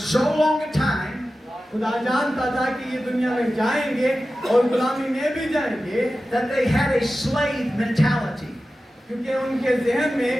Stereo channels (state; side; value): normal; both; correlation 0.94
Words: long a time खुदा जानता था कि ये दुनिया में जाएंगे और गुलामी में भी जाएंगे, that they had a slave mentality. क्योंकि उनके ज़हन